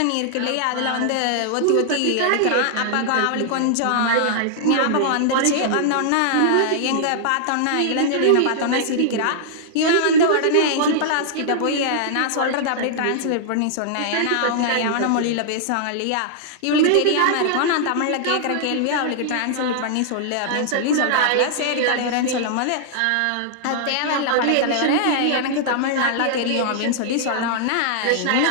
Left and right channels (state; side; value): different; both; correlation -0.01